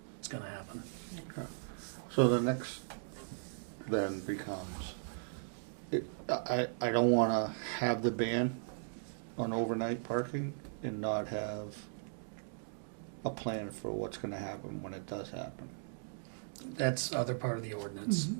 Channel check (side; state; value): left; silent; digital silence